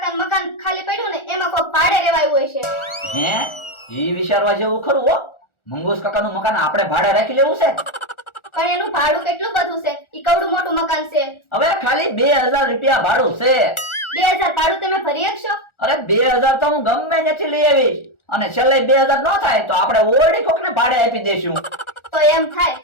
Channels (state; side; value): late; right; 1.4 ms